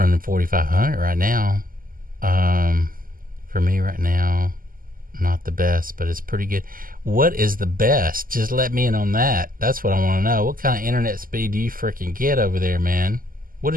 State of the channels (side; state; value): left; late; 0.41 ms